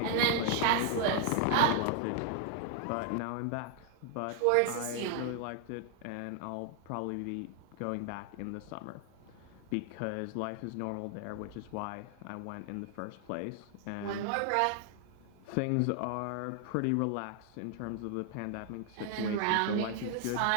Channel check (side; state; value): both; different; correlation 0.00